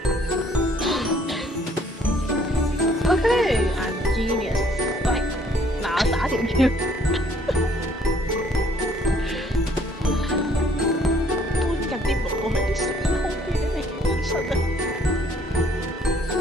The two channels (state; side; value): normal; both; correlation 0.62